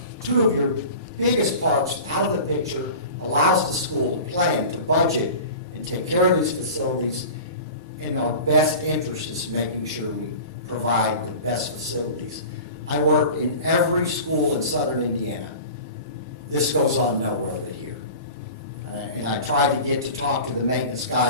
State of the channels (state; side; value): inverted; both; correlation -0.37